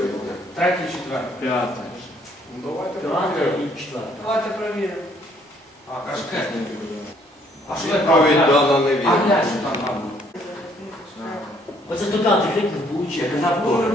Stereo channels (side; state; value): both; normal; correlation 0.65